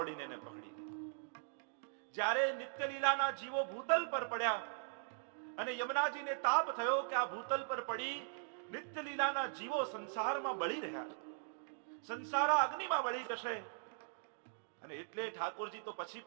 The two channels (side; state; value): left; silent; digital silence